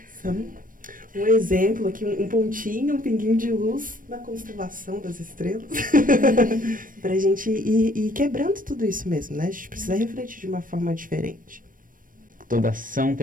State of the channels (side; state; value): left; late; 0.40 ms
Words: são um exemplo aqui, um pontinho, um pinguinho de luz na constelação das estrelas pra gente ir quebrando tudo isso mesmo, né? A gente precisa refletir de uma forma diferente. Toda ação